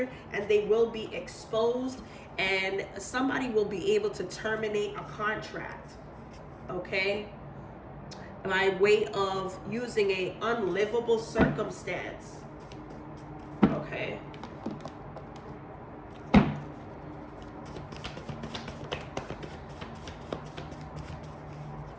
and they will be exposed, and somebody will be able to terminate a contract, okay, by way of using a unlivable circumstance. Okay.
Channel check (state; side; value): identical; both; correlation 1.00